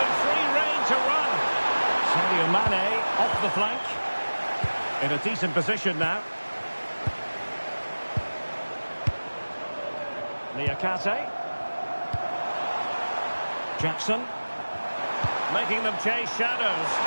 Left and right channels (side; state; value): both; inverted; correlation -1.00